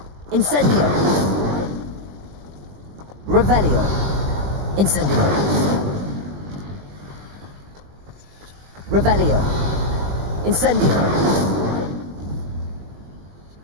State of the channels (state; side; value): late; left; 20 ms